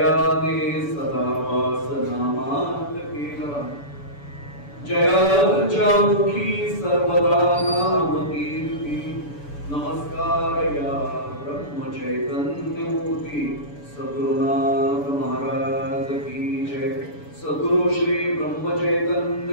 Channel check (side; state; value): right; late; 6.9 ms